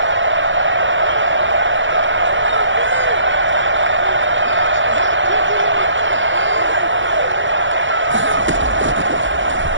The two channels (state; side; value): late; left; 0.55 ms